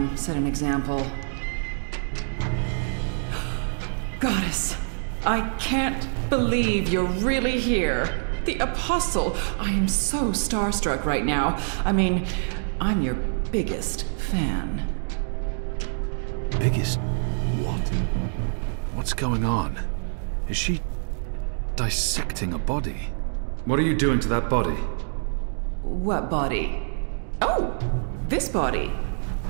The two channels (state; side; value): silent; left; digital silence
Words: set an example. Goddess, I can't believe you're really here. The Apostle. I am so starstruck right now. I mean, I'm your biggest fan. Biggest... what? What's going on? Is she dissecting a body? What are you doing to that body? What body? Oh, this body.